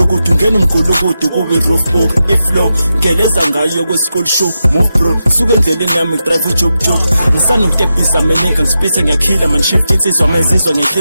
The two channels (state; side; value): inverted; both; correlation -0.89